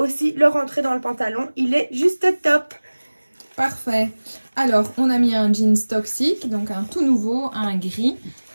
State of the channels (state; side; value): inverted; both; correlation -1.00